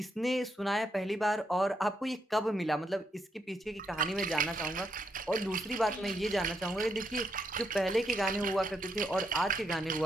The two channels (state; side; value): normal; both; correlation 0.78